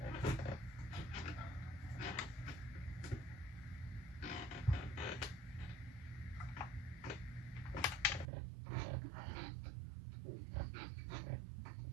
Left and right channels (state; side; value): drops out; left; at 8.2 s